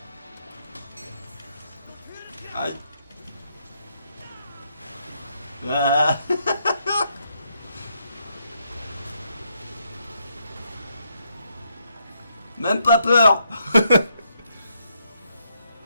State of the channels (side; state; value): both; inverted; correlation -0.77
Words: Aïe. Ah. Même pas peur.